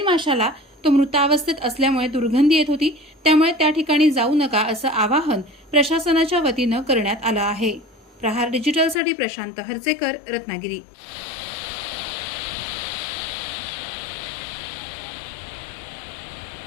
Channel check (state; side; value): drops out; right; at 9.0 s